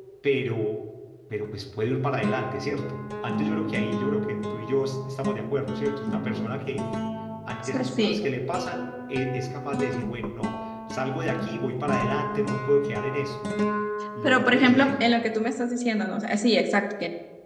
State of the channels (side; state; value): both; identical; correlation 1.00